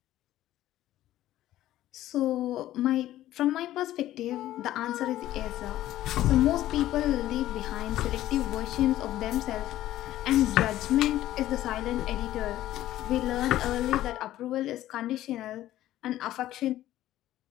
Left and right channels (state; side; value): quieter; right; 14.0 dB